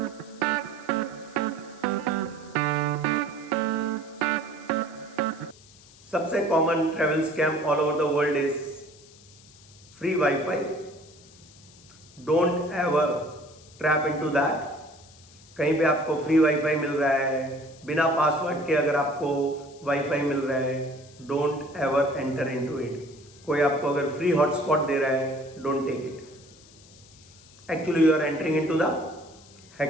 सबसे common travel scam all over the world is free WiFi. Don't ever trap into that. कहीं पे आपको फ्री वाईफाई मिल रहा है, बिना पासवर्ड के अगर आपको वाईफाई मिल रहा है, don't ever enter into it. कोई आपको अगर फ्री हॉटस्पॉट दे रहा है, don't take it. Actually you are entering into the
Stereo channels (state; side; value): noise; left; hiss, 24 dB below the sound